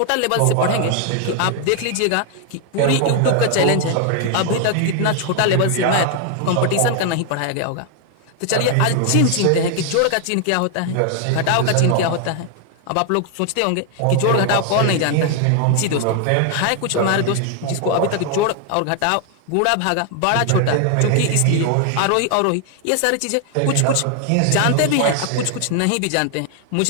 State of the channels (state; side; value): different; both; correlation 0.00